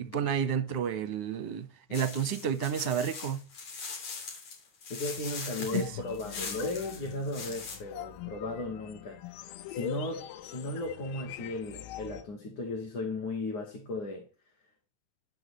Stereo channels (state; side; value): late; right; 9.7 ms